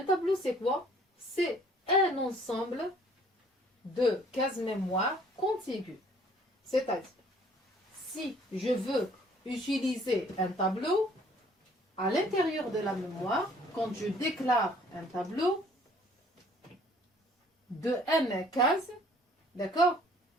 tableau, c'est quoi? C'est un ensemble de cases mémoire contiguës. C'est-à-dire, si je veux utiliser un tableau, à l'intérieur de la mémoire, quand je déclare un tableau de n cases, d'accord,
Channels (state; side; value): normal; both; correlation 0.57